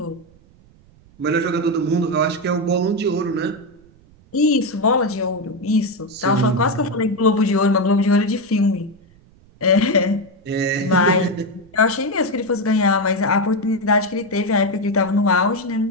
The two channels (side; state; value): right; noise; rumble, 28 dB below the sound